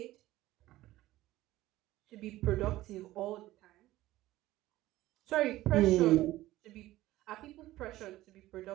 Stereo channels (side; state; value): left; quieter; 16.2 dB